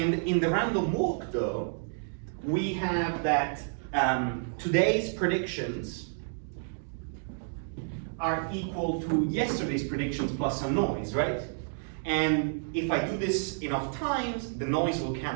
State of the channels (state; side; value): silent; left; digital silence